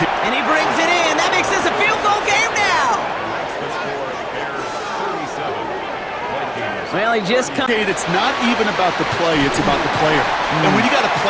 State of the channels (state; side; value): identical; both; correlation 1.00